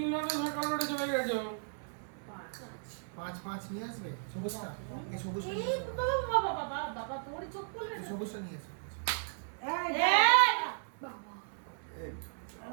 সরকার রোডে চলে গেছো। পাঁচ পাঁচ নিয়ে আসবে সবুজটা এই সবুজটা নিয়ে এই আসবে। বাবা বাবা বাবা বাবা তোর চোখ খুলবে এই না সবুজটা নিয়ে আসবে এই এই বাবা এই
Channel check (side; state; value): left; silent; 54 dB below the other